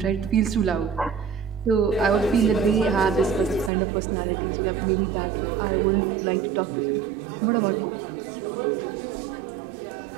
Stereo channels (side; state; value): left; drops out; at 3.7 s